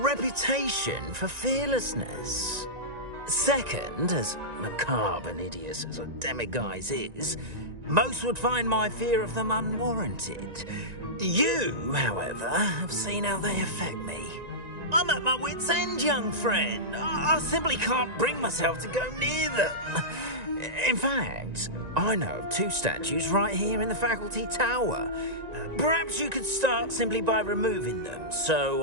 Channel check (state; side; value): late; left; 1.9 ms